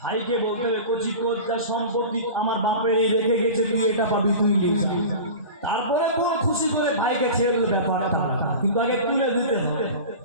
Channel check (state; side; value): inverted; both; correlation -0.33